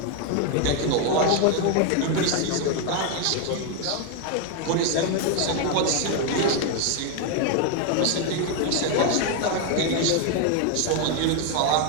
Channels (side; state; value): both; different; correlation 0.01